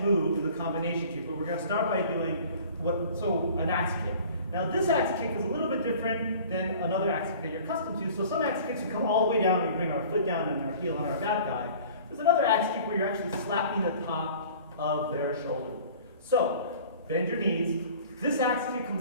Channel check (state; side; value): inverted; both; correlation -0.46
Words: move is a combination kick, but we're going to start by doing an axe kick. Now this axe kick is a little bit different than another axe kick that you're accustomed to. So some axe kicks we come all the way down and we bring our foot down and our heel on our bad guy. There's another axe kick where you're actually slapping the top of their shoulder. So bend your knees. This axe kick